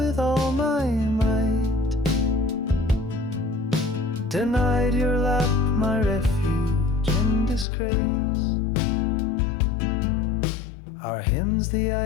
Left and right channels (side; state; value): right; drops out; at 7.7 s